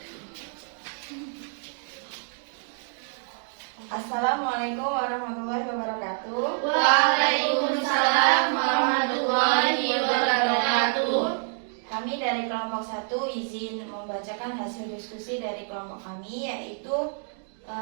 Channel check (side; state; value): left; silent; 59 dB below the other